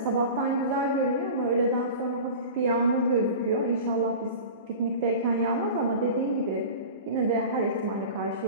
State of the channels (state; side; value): inverted; both; correlation -0.35